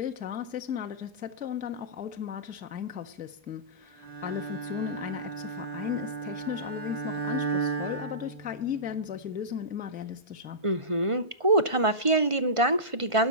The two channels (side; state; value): left; late; 1.5 ms